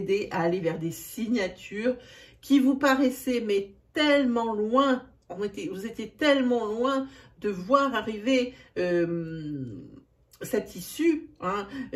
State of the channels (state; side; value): identical; both; correlation 1.00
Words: à aller vers des signatures qui vous paraissaient mais tellement loin. Vous étiez tellement loin de voir arriver cette issue, hein,